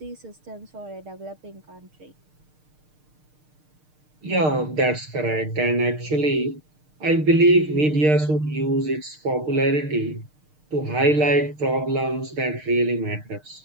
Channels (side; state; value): left; late; 6.6 ms